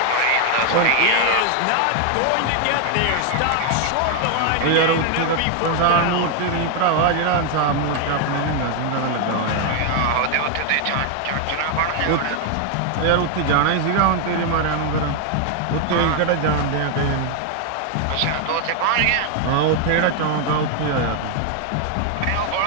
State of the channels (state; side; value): different; both; correlation 0.00